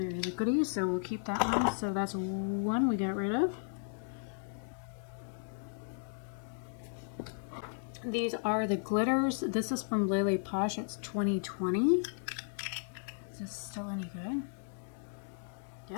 liquidy, so we'll keep that one. So that's one we got rid of. These are the glitters. This is from Lele Posh. It's 2020. Is this still any good?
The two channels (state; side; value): silent; right; digital silence